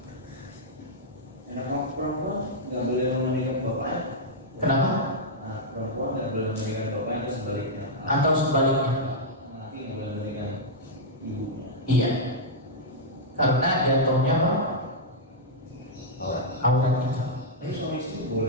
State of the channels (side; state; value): both; normal; correlation -0.06